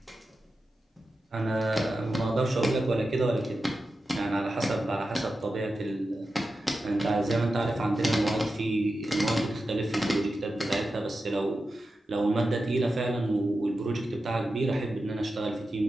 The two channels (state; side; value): normal; both; correlation 0.91